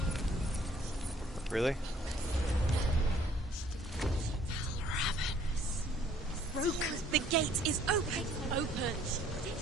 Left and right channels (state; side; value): normal; both; correlation 0.60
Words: Really? Rook, the gate is open. Open.